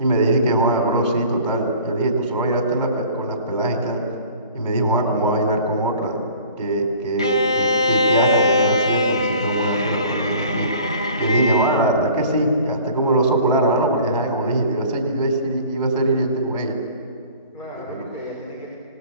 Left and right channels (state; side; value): inverted; both; correlation -0.47